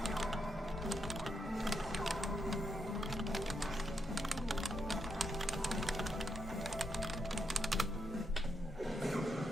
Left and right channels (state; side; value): normal; both; correlation 0.81